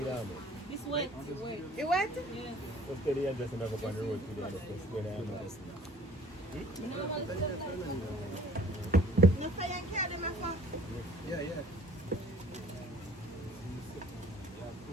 This wet. You what? Let's get the address and go up on the road today. No fire and carry them off. Yeah, yeah.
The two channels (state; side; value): normal; both; correlation 0.51